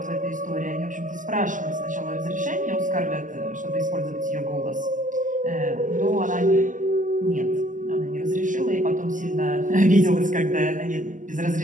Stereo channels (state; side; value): late; left; 0.37 ms